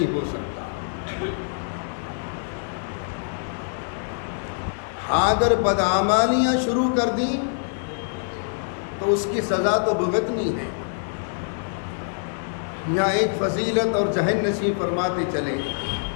ہو سکتا. اگر بدعمالیاں شروع کر دیں تو اس کی سزا تو بھگتنی ہے۔ یہاں ایک فضیلت اور ذہن نشین فرماتے چلے،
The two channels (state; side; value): silent; right; digital silence